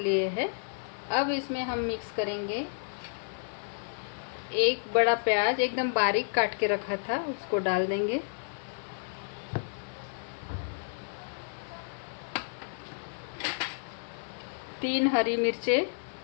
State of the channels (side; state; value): right; silent; digital silence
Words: हैं। अब इसमें हम मिक्स करेंगे एक बड़ा प्याज एकदम बारीक काट के रखा था, उसको डाल देंगे। तीन हरी